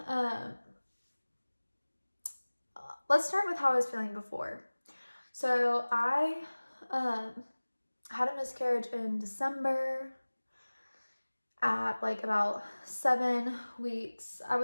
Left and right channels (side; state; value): both; inverted; correlation -1.00